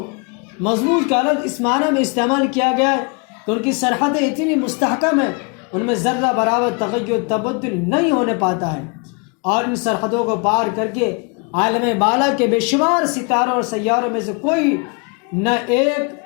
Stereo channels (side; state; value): right; quieter; 34.1 dB